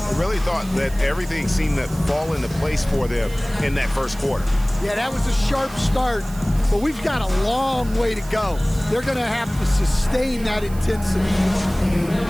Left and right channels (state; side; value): noise; right; hiss, 19 dB below the sound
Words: really thought that everything seemed to fall into place for them in that first quarter. Yeah, that was a sharp start, but we've got a long way to go. They're going to have to sustain that intensity.